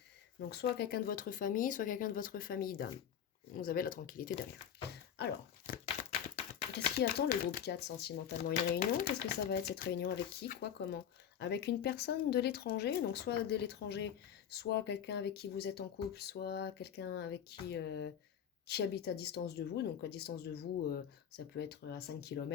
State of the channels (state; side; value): quieter; right; 8.9 dB